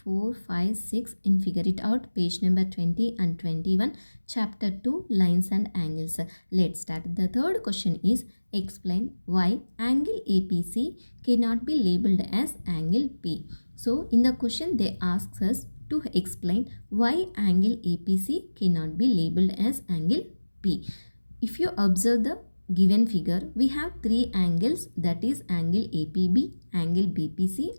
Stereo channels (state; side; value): inverted; both; correlation -1.00